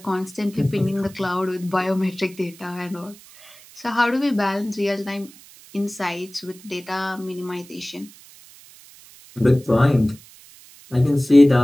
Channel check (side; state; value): right; noise; hiss, 22 dB below the sound